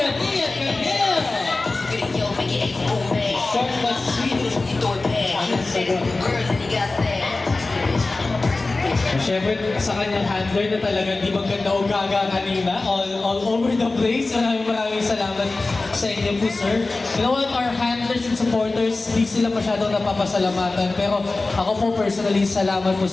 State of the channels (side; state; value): right; quieter; 3.4 dB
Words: Ian Camille. Short but sweet. Siyempre, sa kanyang handler na talagang di maganda o gaga kanina, all over the place. Maraming salamat sa inyo po, sir. You know what, our handlers and supporters, di sila masyadong napapasalamatan. Pero ako po personally, salamat po